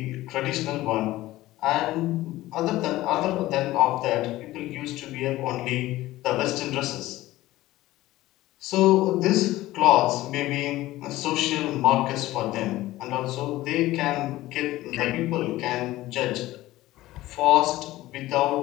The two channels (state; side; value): quieter; right; 16.7 dB